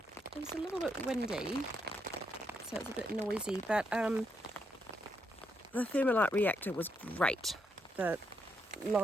It was a little bit windy, so it was a bit noisy, but the thermalite reactor was great. The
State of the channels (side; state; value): both; normal; correlation 0.79